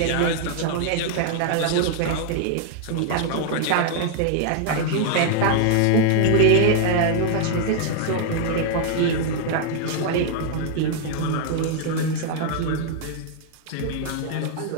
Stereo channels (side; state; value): both; different; correlation 0.00